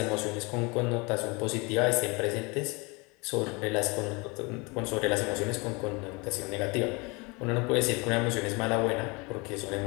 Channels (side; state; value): right; quieter; 27.8 dB